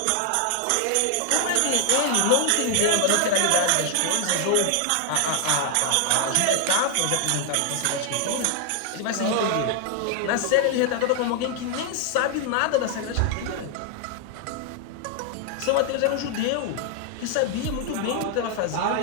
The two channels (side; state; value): both; different; correlation 0.00